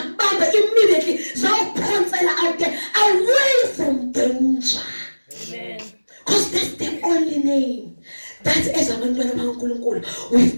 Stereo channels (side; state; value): both; inverted; correlation -1.00